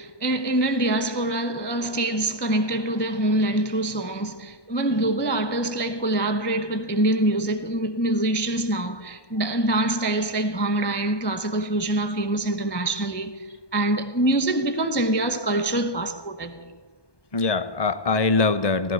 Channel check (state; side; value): late; right; 1.2 ms